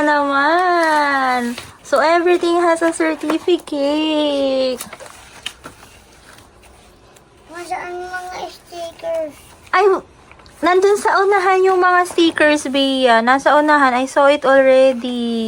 naman. So, everything has a certificate. Masaan mga stickers? Ay, nandun sa unahan yung mga stickers, Bea. Nasa unahan. I saw it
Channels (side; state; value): both; identical; correlation 1.00